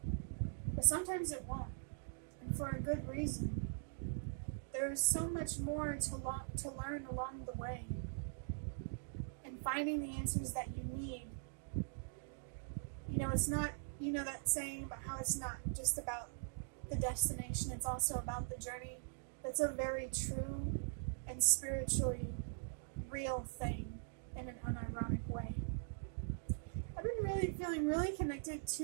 but sometimes it won't, and for a good reason. There is so much more to learn along the way, and finding the answers that you need it's not, that saying about how it's not just about the destination, it's also about the journey. That's a very true and spiritually real thing in an unironic way. I've been feeling really connected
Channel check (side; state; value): left; silent; digital silence